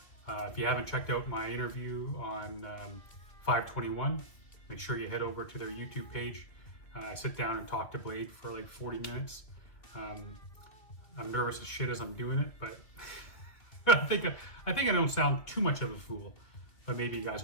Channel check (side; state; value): right; late; 2.6 ms